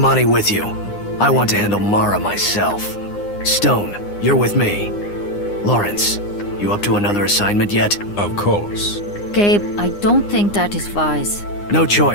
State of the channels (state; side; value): late; right; 9.8 ms